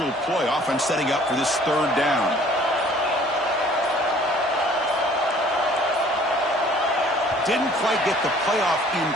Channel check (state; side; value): normal; both; correlation 0.54